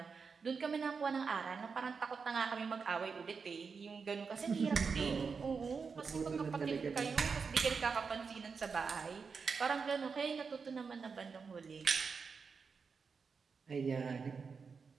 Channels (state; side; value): quieter; left; 5.3 dB